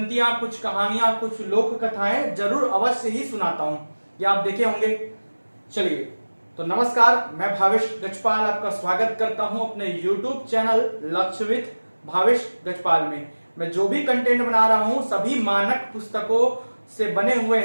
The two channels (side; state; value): both; inverted; correlation -1.00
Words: कुछ कहानियां, कुछ लोक कथाएं जरूर अवश्य ही सुनाता हूं। ये आप देखे होंगे। चलिए तो नमस्कार, मैं भावेश गजपाल आपका स्वागत करता हूं अपने YouTube चैनल लक्ष्य विद भावेश गजपाल में। मैं जो भी कंटेंट बना रहा हूं सभी मानक पुस्तकों से बने हुए